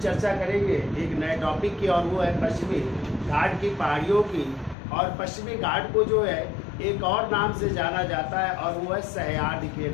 करेंगे एक नए टॉपिक की, और वो है पश्चिमी घाट की पहाड़ियों की। और पश्चिमी घाट को जो है एक और नाम से जाना जाता है, और वो है सह्याद्री के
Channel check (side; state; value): right; drops out; at 4.8 s